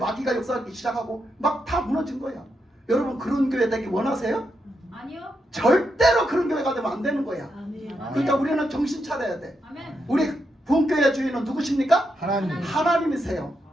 역사하기 시작하고 막 다 무너진 거야. 여러분 그런 교회 되기 원하세요? 아니요. 절대로 그런 교회가 되면 안 되는 거야. 아멘. 그러니까 우리는 정신 차려야 돼. 아멘. 우리 부흥교회 주인은 누구십니까? 하나님이세요.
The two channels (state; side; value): normal; both; correlation 0.83